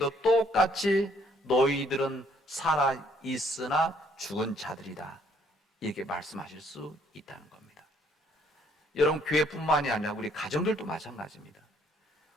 똑같이 너희들은 살아있으나 죽은 자들이다, 이렇게 말씀하실 수 있다는 겁니다. 여러분, 교회뿐만이 아니라 우리 가정들도 마찬가지입니다.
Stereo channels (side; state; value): both; normal; correlation 0.65